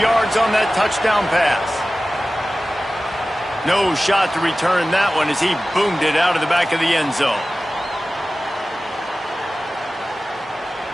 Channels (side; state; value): both; normal; correlation 0.96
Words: on that touchdown pass. No shot to return that one as he boomed it out of the back of the end zone.